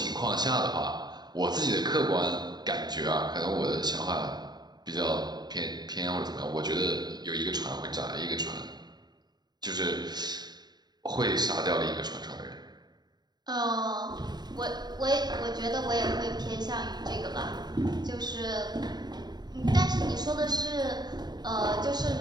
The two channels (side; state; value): left; late; 0.20 ms